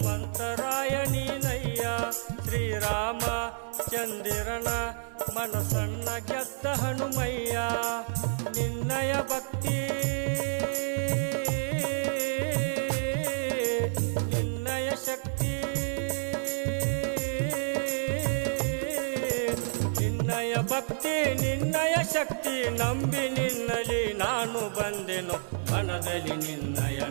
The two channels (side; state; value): left; silent; 58 dB below the other